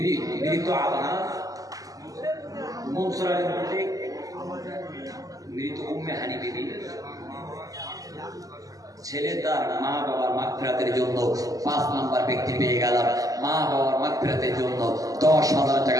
আলহাজ মনসুর আলী মল্লিক, মৃত উম্মে হানি বিবি, ছেলে তার মা বাবার মাগফিরাতের জন্য 5 নাম্বার ব্যক্তি পেয়ে গেলাম। মা বাবার মাগফিরাতের জন্য 10,000 টাকা।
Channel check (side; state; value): left; late; 0.17 ms